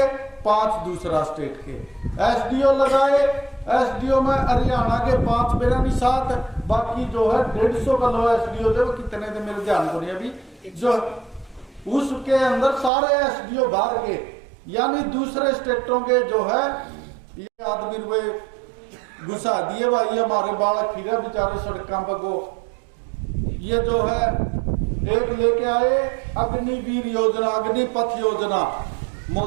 5 दूसरा स्टेट के। SDO लगाए, SDO में हरियाणा के 5 मेरा नहीं 7, बाकी जो है 150 का लो SDO थे, वो कितने थे मेरे ध्यान को नहीं अभी, जो उसके अंदर सारे SDO बाहर के, यानी दूसरे स्टेटों के जो है ये आदमी रुपए घुसा दिए भाई। हमारे बालक फिर बेचारे सड़कों पर को, ये जो है एक लेके आए अग्निवीर योजना, अग्निपथ योजना,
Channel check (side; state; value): left; drops out; at 12.9 s